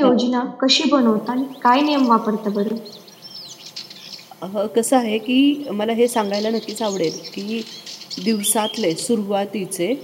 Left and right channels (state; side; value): identical; both; correlation 1.00